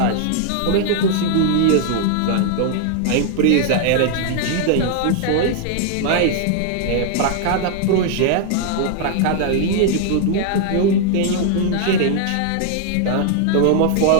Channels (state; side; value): different; both; correlation 0.00